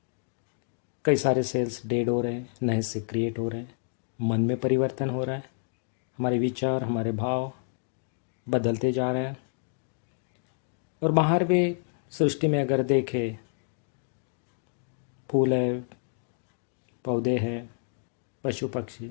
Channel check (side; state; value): right; silent; digital silence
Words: कई सारे सेल्स डेड हो रहे हैं, नए से क्रिएट हो रहे हैं। मन में परिवर्तन हो रहा है, हमारे विचार, हमारे भाव बदलते जा रहे हैं। और बाहर भी सृष्टि में अगर देखें, फूल है, पौधे हैं, पशु